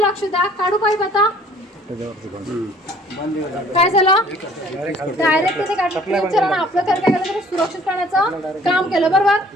द्या. काढू पाईप आता. काय झालं डायरेक्ट तिथे काढलं आपलं घर काय केलं सुरक्षित करण्याचं काम केलं. बरोबर.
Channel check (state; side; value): normal; both; correlation 0.55